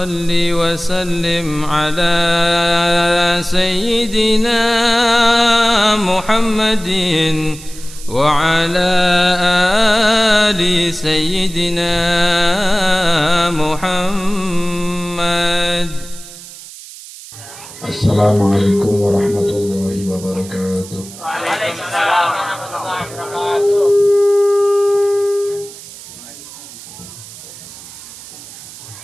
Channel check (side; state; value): right; noise; hiss, 16 dB below the sound